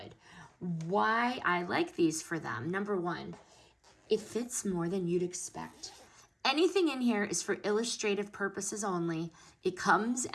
Why I like these for them: number one, it fits more than you'd expect. Anything in here is for illustrative purposes only. It comes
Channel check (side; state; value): both; identical; correlation 1.00